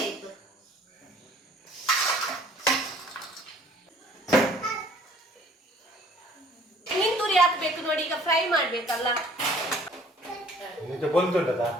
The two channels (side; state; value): both; normal; correlation 0.55